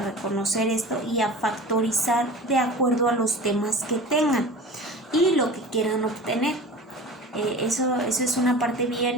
esto y a factorizar de acuerdo a los temas que tengan y lo que quieran obtener. Eso es una parte bien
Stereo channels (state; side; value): normal; both; correlation 0.36